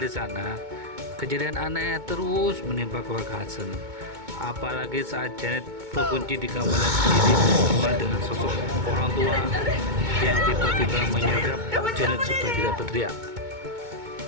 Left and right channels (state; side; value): late; left; 2.2 ms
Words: di sana, kejadian aneh terus menimpa keluarga Hudson. Apalagi saat Janet terkunci di kamarnya sendiri bersama dengan sosok orang tua yang tiba-tiba menyergap Janet supaya tidak berteriak.